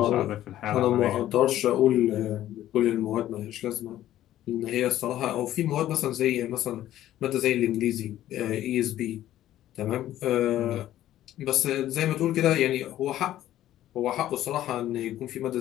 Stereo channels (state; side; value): quieter; right; 13.1 dB